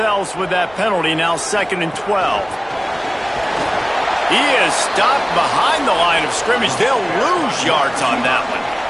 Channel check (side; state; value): right; noise; hum, 25 dB below the sound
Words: with that penalty. Now 2nd and 12. He is stopped behind the line of scrimmage. They'll lose yards on that one.